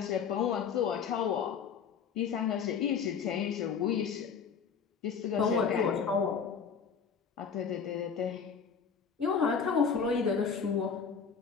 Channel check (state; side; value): quieter; right; 6.4 dB